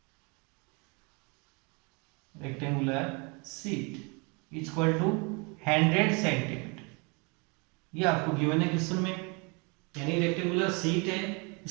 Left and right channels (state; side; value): quieter; left; 31.1 dB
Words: rectangular sheet equal to 100 centimetre. ये आपको given है question में, यानी रेक्टेंगुलर शीट है